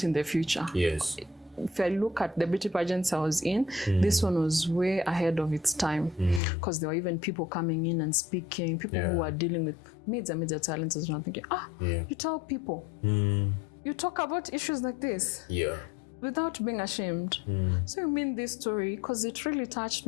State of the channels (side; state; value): right; drops out; at 6.4 s